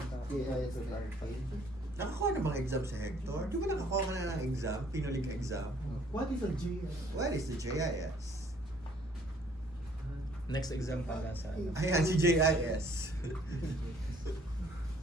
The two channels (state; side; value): normal; both; correlation 0.60